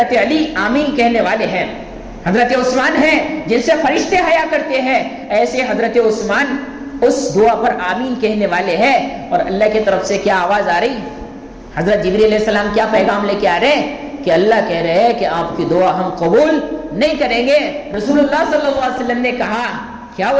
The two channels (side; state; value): both; identical; correlation 1.00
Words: علی آمین کہنے والے ہیں۔ حضرت عثمان ہیں جن سے فرشتے حیا کرتے ہیں، ایسے حضرت عثمان اس دعا پر آمین کہنے والے ہیں۔ اور اللہ کی طرف سے کیا آواز آ رہی؟ حضرت جبریل علیہ السلام کیا پیغام لے کے آ رہے ہیں کہ اللہ کہہ رہے ہیں کہ آپ کی دعا ہم قبول نہیں کریں گے۔ رسول اللہ صلی اللہ علیہ وسلم نے کہا کیا